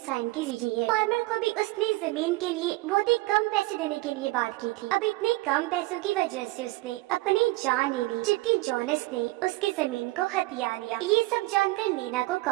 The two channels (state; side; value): quieter; left; 20.6 dB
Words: की है। फार्मर को भी उसने जमीन के लिए बहुत ही कम पैसे देने के लिए बात की थी। अब इतने कम पैसों की वजह से उसने अपनी जान ले ली, जबकि जोनस ने उसकी जमीन को हथिया लिया। ये सब जानकर लीना को